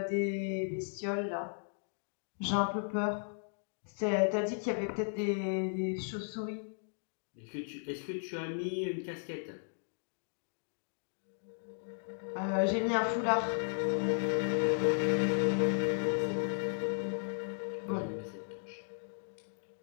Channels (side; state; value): right; silent; digital silence